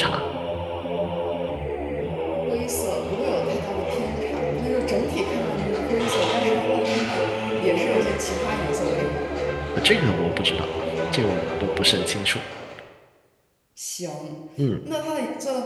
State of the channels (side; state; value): both; identical; correlation 1.00